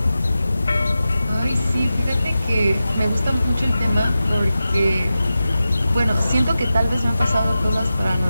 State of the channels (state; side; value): inverted; both; correlation -0.92